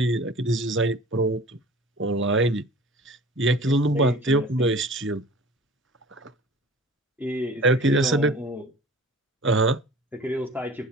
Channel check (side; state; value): both; normal; correlation 0.43